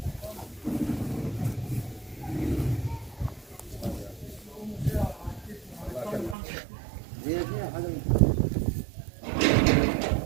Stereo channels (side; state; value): left; drops out; at 6.4 s